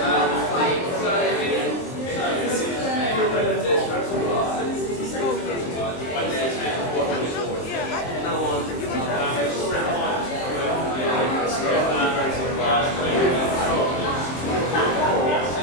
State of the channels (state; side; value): late; right; 23 ms